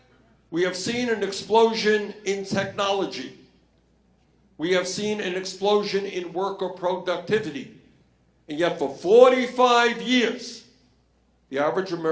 We have seen an explosion in technology. We have seen an explosion in worker productivity. And yet for 45 years, the average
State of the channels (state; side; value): identical; both; correlation 1.00